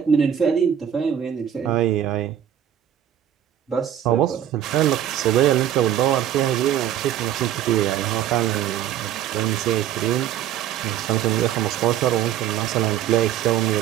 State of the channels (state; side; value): quieter; left; 10.6 dB